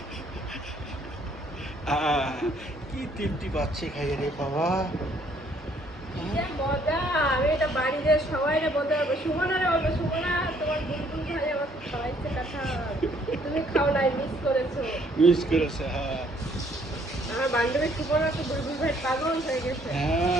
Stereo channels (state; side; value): normal; both; correlation 0.64